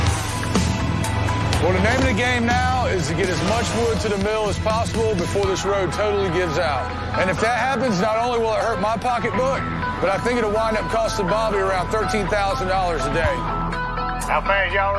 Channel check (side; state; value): both; identical; correlation 1.00